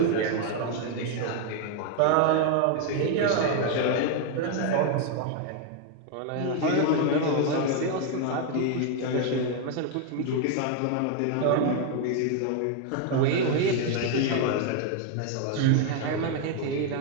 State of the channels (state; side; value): different; both; correlation 0.01